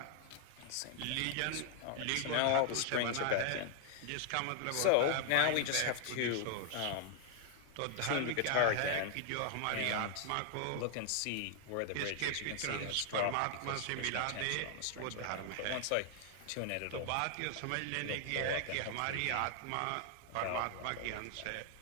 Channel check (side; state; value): both; different; correlation 0.00